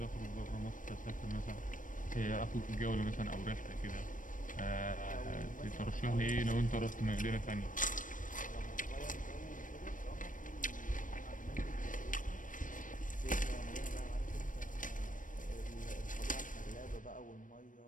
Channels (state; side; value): late; right; 0.38 ms